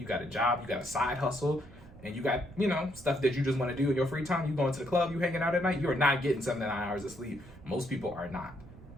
got a job, you got a side hustle, and you got, stuff that you just want to do in your free time. You going to the club, you hanging out at night, you're not getting 7 to 9 hours of sleep. Most people are not.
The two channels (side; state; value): right; noise; rumble, 19 dB below the sound